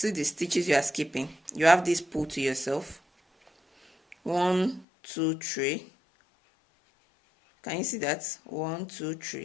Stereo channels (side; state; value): right; drops out; at 4.9 s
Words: the stitches you are skipping, you have this pull to yourself. 1, 2, 3. Can you see that? 1, 2,